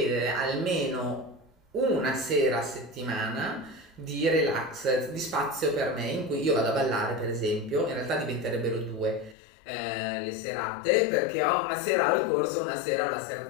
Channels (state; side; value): drops out; right; at 9.3 s